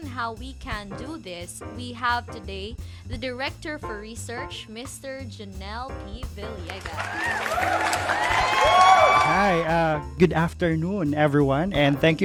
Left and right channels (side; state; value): both; identical; correlation 1.00